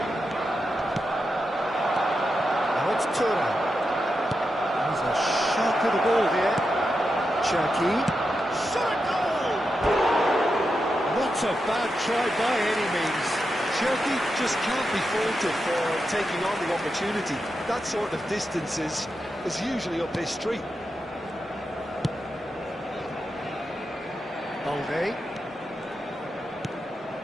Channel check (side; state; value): both; normal; correlation 0.88